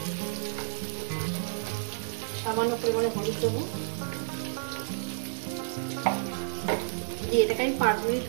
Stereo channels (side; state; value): left; silent; digital silence